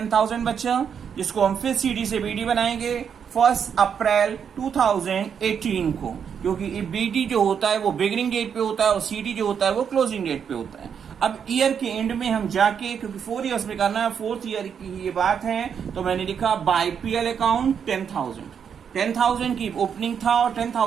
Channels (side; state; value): left; quieter; 7.4 dB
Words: बचा, जिसको हम फिर सीडी से बीडी बनाएंगे 1 अप्रैल 2018 को, क्योंकि बीडी जो होता है वो बिगिनिंग डेट पे होता है और सीडी जो होता है वो क्लोजिंग डेट पे होता है। अब ईयर के एंड में हम जाके, क्योंकि 4 ईयर्स में करना है, 4th ईयर की ये बात है, तो मैंने लिखा बाय पीएल अकाउंट 10,000 की ओपनिंग था और